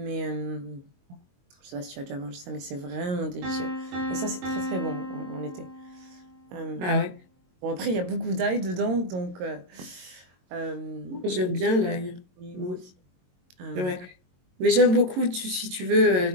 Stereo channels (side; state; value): left; late; 22 ms